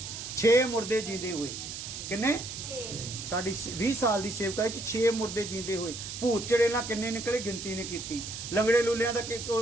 6 ਮੁਰਦੇ ਜੀਂਦੇ ਹੋਏ। ਕਿੰਨੇ? 6। ਸਾਡੀ 20 ਸਾਲ ਦੀ ਸੇਵਕਾ 'ਚ 6 ਮੁਰਦੇ ਜੀਂਦੇ ਹੋਏ। ਭੂਤ ਚੜੇਲਾਂ ਕਿੰਨੇ ਨਿਕਲੇ ਗਿਣਤੀ ਨਹੀਂ ਕੀਤੀ। ਲੰਗੜੇ ਲੂਲਿਆਂ ਦਾ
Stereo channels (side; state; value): right; noise; hiss, 8 dB below the sound